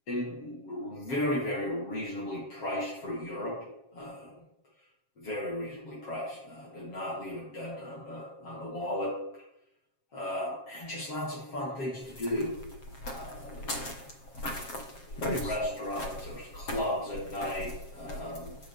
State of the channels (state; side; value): late; right; 7.4 ms